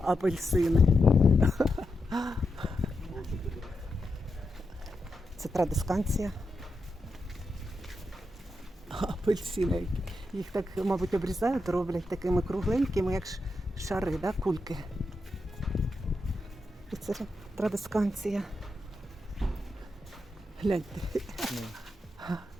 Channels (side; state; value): both; normal; correlation 0.86